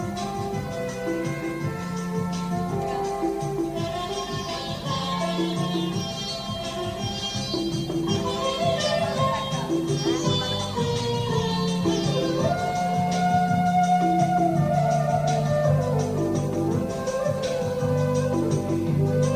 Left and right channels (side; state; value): both; identical; correlation 1.00